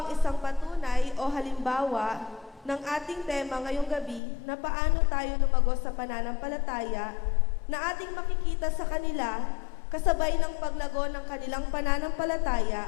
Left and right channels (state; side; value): drops out; right; at 4.2 s